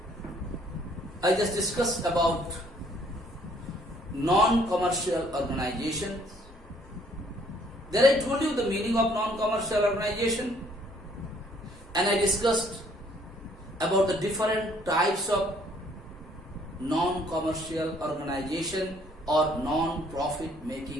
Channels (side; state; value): both; normal; correlation 0.62